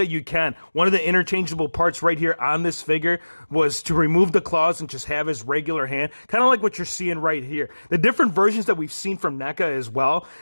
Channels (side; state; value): both; inverted; correlation -1.00